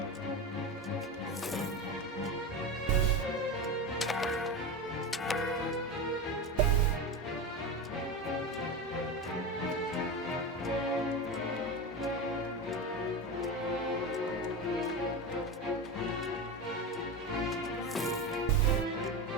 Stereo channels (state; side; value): normal; both; correlation 0.22